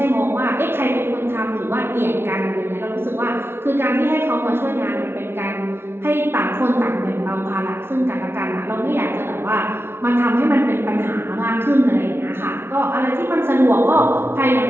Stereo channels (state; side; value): late; left; 0.11 ms